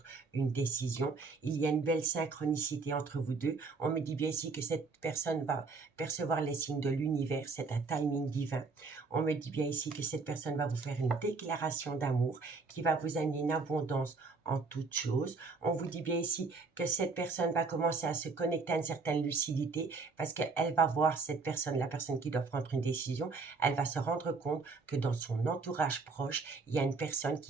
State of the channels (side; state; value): left; quieter; 4.2 dB